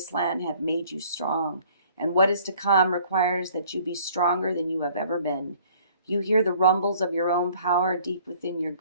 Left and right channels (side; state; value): both; inverted; correlation -0.56